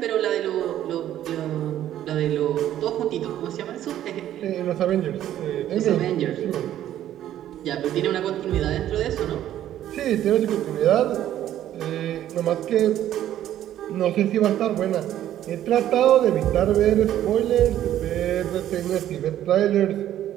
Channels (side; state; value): left; quieter; 12.0 dB